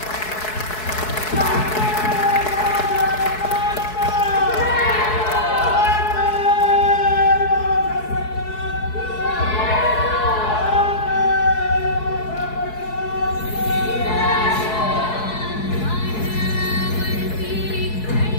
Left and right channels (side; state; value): right; late; 4.7 ms